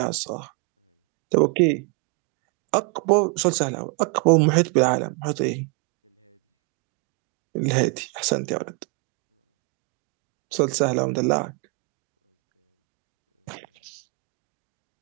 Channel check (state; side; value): quieter; left; 37.0 dB